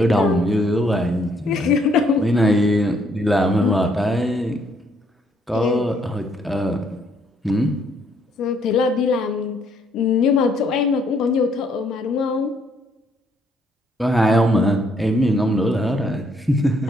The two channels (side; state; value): both; normal; correlation 0.69